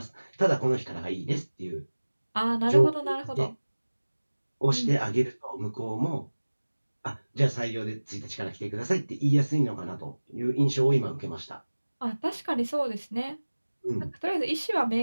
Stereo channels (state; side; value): inverted; both; correlation -1.00